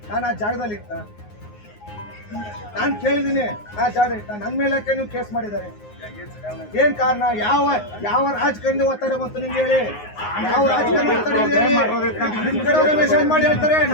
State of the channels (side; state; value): right; late; 9.6 ms